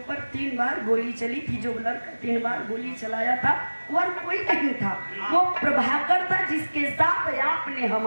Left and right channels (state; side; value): inverted; both; correlation -1.00